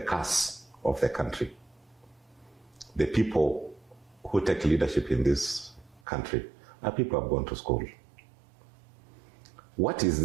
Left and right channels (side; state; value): left; drops out; at 6.0 s